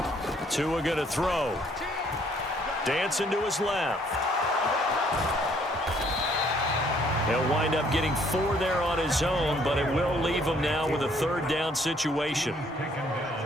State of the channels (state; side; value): normal; both; correlation 0.64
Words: Tua going to throw. Dancing to his left. He'll wind up getting 4 there on his own, but it will leave him now with a 3rd down situation.